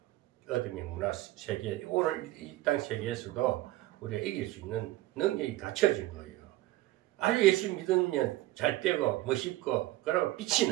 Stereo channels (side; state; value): left; quieter; 17.1 dB